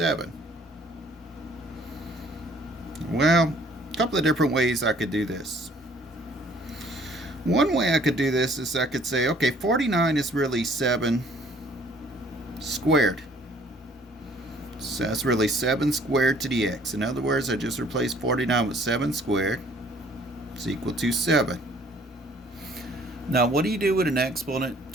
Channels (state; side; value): normal; both; correlation 0.58